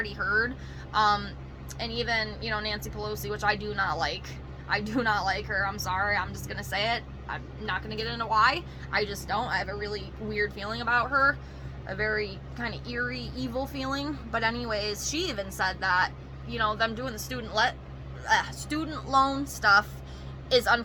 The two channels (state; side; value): identical; both; correlation 1.00